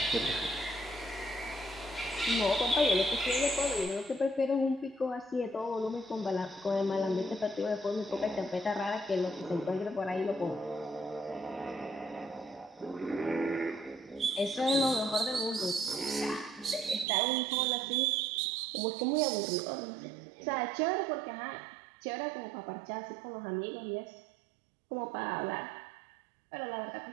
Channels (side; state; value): left; drops out; at 17.1 s